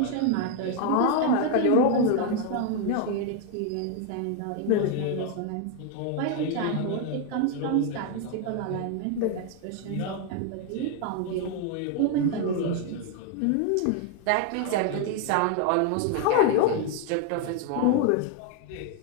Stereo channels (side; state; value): both; different; correlation 0.01